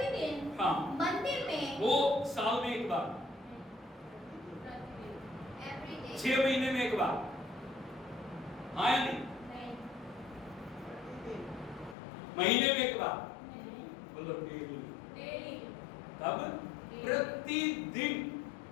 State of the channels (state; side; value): drops out; right; at 12.0 s